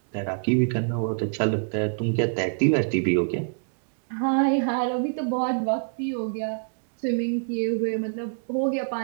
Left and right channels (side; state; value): left; silent; digital silence